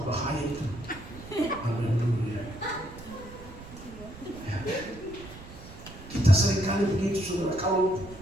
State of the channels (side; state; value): right; noise; rumble, 16 dB below the sound